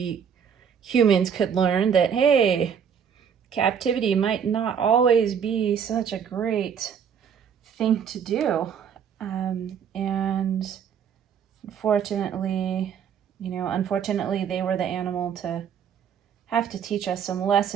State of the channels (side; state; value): left; quieter; 7.7 dB